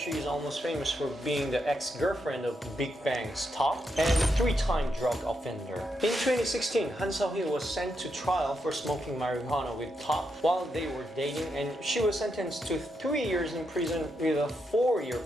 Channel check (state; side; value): normal; both; correlation 0.83